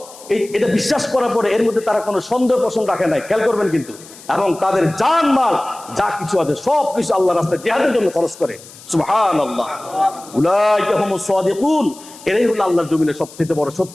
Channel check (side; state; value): left; noise; hiss, 20 dB below the sound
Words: এটা বিশ্বাস করার পরে এর মধ্যে তারা কোনো সন্দেহ পোষণ রাখে নাই, খেয়াল করবেন কিন্তু, এবং তাদের জান মাল যা কিছু আছে সব কিছু আল্লাহর রাস্তায় জিহাদের জন্য খরচ করে। সুবহানাল্লাহ। উলাইকা হুমুস সাদিকুন, এরাই হলো আল্লাহর জমিনে সবচেয়ে বড়